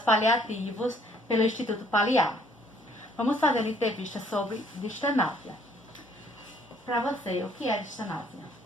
paliativos pelo Instituto Paliar. Vamos fazer uma entrevista sobre distanásia. Para você, o que é distanásia?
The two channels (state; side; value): normal; both; correlation 0.62